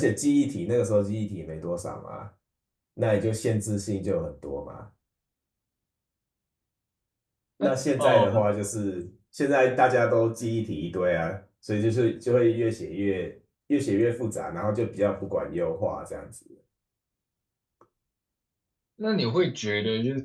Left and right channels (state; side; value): identical; both; correlation 1.00